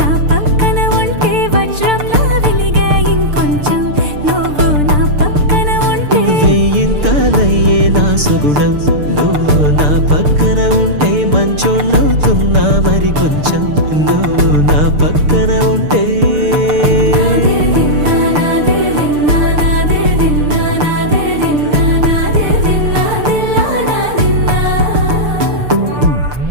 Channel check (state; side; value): late; left; 6.7 ms